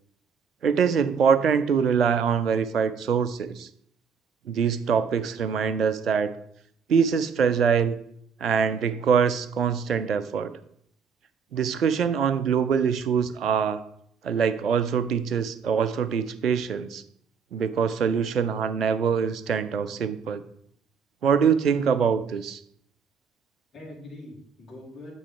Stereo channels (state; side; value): quieter; left; 6.4 dB